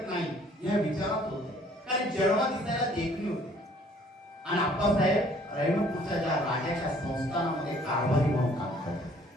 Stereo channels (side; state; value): both; normal; correlation 0.58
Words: नाही या विचारात होते. कारण जन्मा दिसायला देखणी होते. आणि आप्पासाहेब रहिमतपूरच्या ज्या राजाच्या संस्थानामध्ये कारभारी म्हणून काम